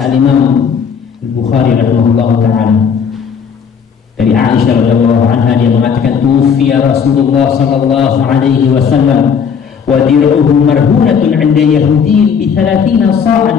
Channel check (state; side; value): quieter; right; 6.8 dB